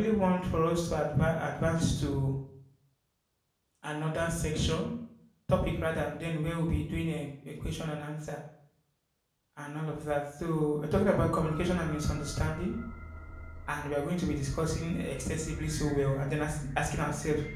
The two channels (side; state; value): both; identical; correlation 1.00